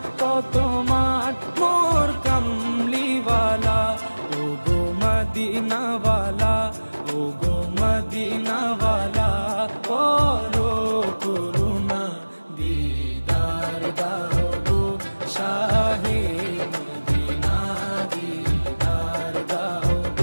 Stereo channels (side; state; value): both; inverted; correlation -1.00